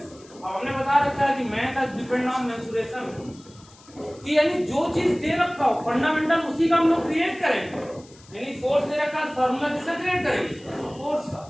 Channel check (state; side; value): noise; left; hiss, 25 dB below the sound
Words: अब हमने बता रखा है कि मैथ डिपेंड ऑन मेंसुरेशन, कि यानी जो चीज दे रखा हो फंडामेंटल उसी का हम लोग क्रिएट करेंगे। यानी फोर्स दे रखा है, फार्मूला किसका क्रिएट करेंगे? फोर्स का।